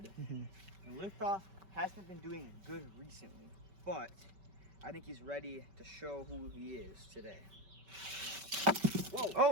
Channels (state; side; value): late; left; 5.2 ms